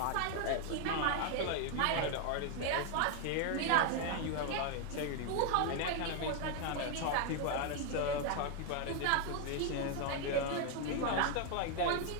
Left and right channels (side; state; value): both; different; correlation 0.01